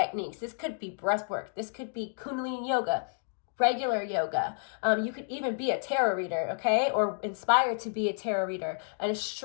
This could be breath work. This could be Kundalini yoga, regular yoga. You could even be a tarot reader, okay? Or inspired to be a tarot reader, an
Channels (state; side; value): silent; right; digital silence